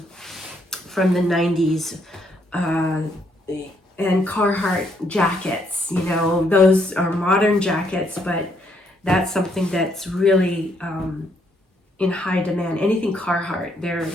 the 90s. And Carhartt jackets, you know, those are modern jackets, but that's something that's really in high demand. Anything Carhartt, they're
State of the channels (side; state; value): both; normal; correlation 0.72